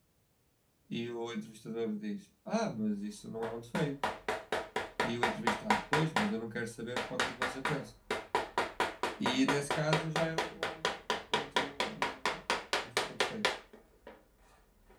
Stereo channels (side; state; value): both; identical; correlation 1.00